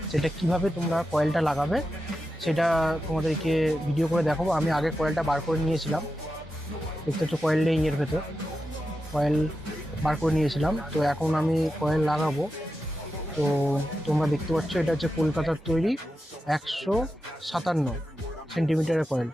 সেটা কিভাবে তোমরা কয়েলটা লাগাবে সেটা তোমাদেরকে ভিডিও করে দেখাবো। আমি আগে কয়েলটা বার করে নিয়েছিলাম, দেখতে হচ্ছে কয়েল নেই এর ভেতর, কয়েল বার করে নিয়েছিলাম। তো এখন আমি কয়েল লাগাবো। তো তোমরা দেখতে পাচ্ছ এটা হচ্ছে কলকাতার তৈরি 157 সেন্টিমিটারের কয়েল।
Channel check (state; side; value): normal; both; correlation 0.90